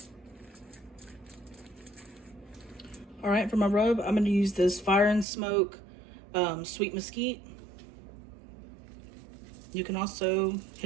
All right, for my rub, I'm gonna use this Fire and Smoke sweet mesquite. You can also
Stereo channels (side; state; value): left; drops out; at 5.2 s